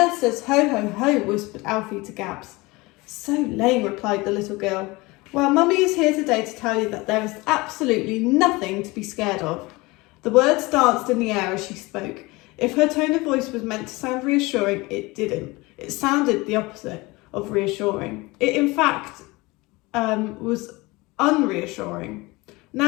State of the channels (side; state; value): right; quieter; 23.0 dB